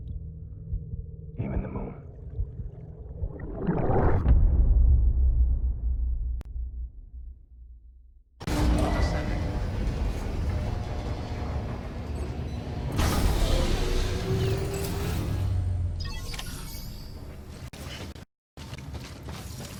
Even the moon.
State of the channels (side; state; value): both; identical; correlation 1.00